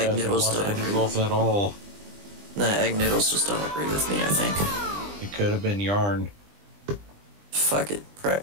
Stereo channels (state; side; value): late; left; 20 ms